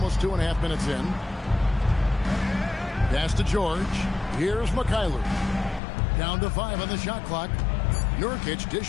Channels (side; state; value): right; drops out; at 5.8 s